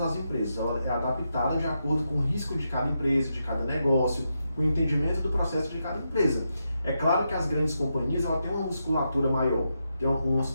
empresas, ela é adaptada de acordo com o risco de cada empresa, de cada negócio, com o entendimento do processo de cada empresa. É claro que as grandes companhias, ela tem uma musculatura maior, tem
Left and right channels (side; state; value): both; inverted; correlation -0.85